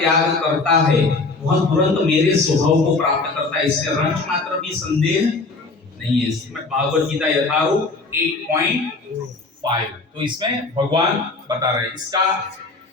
करता है वह तुरंत मेरे स्वभाव को प्राप्त करता है, इससे रंच मात्र भी संदेह नहीं है। श्रीमद् भागवत गीता यथारूप 8.5। तो इसमें भगवान बता रहे हैं। इसका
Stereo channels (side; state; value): right; quieter; 3.7 dB